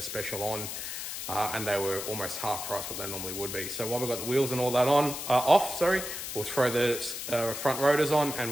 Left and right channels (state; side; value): noise; left; hiss, 6 dB below the sound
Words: special on and they were almost half price what they normally would be. So while we've got the wheels and all that off, we'll throw the front rotors on and